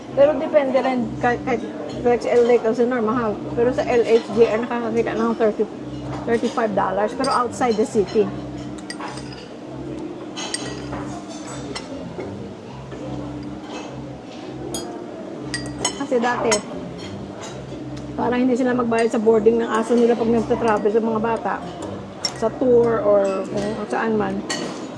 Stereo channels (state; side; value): identical; both; correlation 1.00